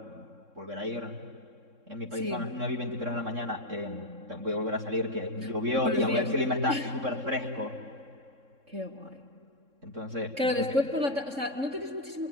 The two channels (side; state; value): left; late; 3.6 ms